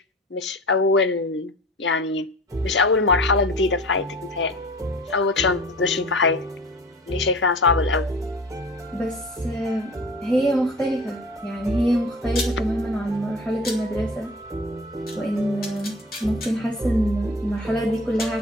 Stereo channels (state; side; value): normal; both; correlation 0.40